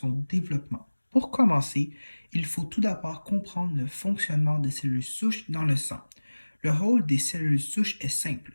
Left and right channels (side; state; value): both; inverted; correlation -1.00